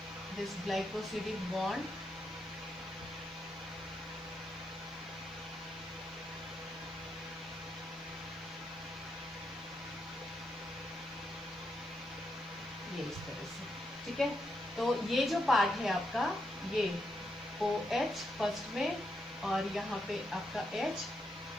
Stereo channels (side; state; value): left; noise; hiss, 30 dB below the sound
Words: दिस ग्लाइकोसिडिक बॉन्ड. ये इस तरह से, ठीक है. तो ये जो पार्ट है आपका, ये OH फर्स्ट में और यहाँ पे आपका H.